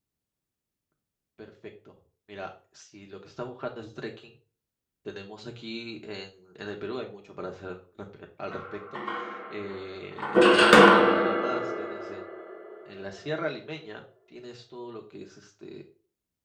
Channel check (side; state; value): both; identical; correlation 1.00